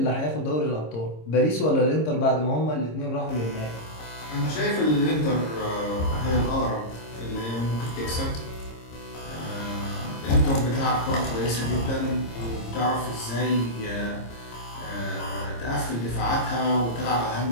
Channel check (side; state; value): right; late; 26 ms